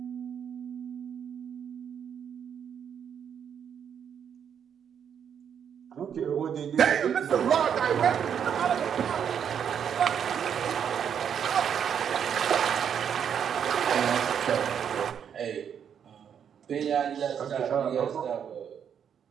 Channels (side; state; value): left; quieter; 8.1 dB